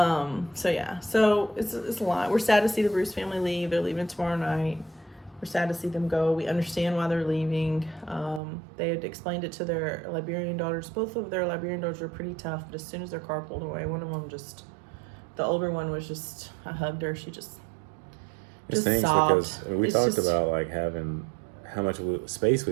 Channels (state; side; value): drops out; left; at 8.4 s